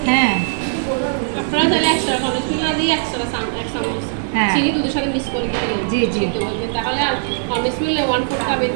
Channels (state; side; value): silent; left; digital silence